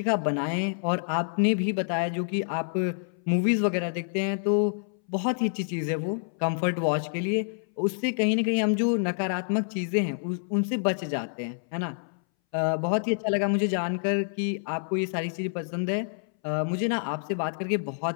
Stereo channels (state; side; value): silent; right; 60 dB below the other